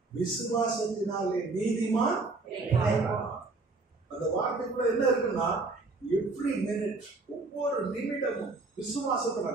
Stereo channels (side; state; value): left; quieter; 3.6 dB